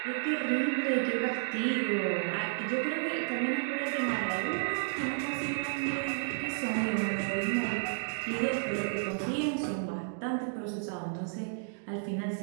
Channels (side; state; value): left; silent; digital silence